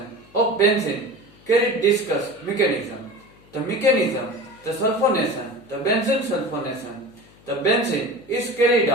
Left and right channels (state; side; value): noise; left; hum, 27 dB below the sound